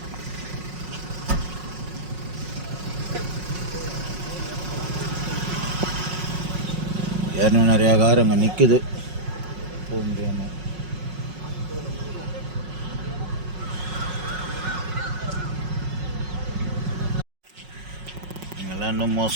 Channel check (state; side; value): late; left; 5.5 ms